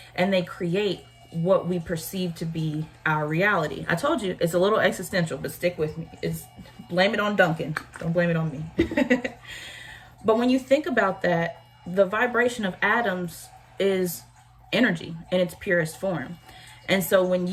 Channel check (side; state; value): both; identical; correlation 1.00